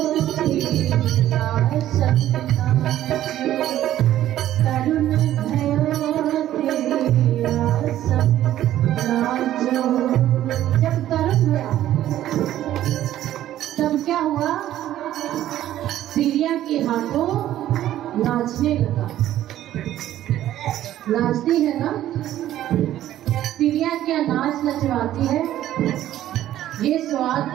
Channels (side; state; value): left; quieter; 12.9 dB